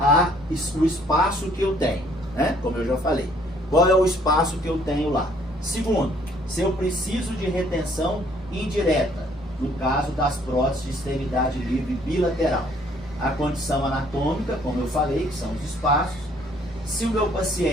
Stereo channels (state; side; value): normal; both; correlation 0.62